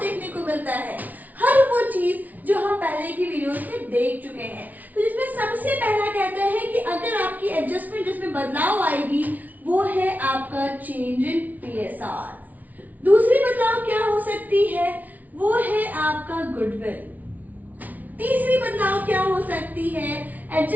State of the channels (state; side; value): late; left; 0.076 ms